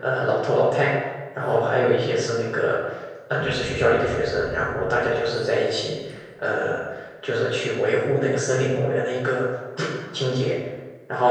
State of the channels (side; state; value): both; identical; correlation 1.00